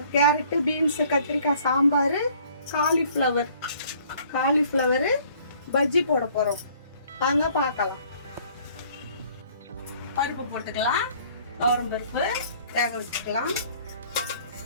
கேரட்டு, பீன்ஸு, கத்திரிக்காய் சாம்பார், காலிஃப்ளவரு பஜ்ஜி போட போகிறோம். வாங்க பார்க்கலாம். பருப்பு போட்டுக்கலாம். துவரம் பருப்பு வேக வச்சுக்கலாம்.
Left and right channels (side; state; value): both; inverted; correlation -0.57